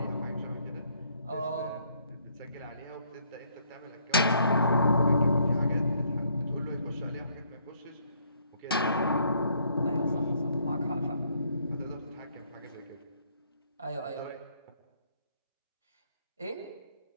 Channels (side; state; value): both; inverted; correlation -0.68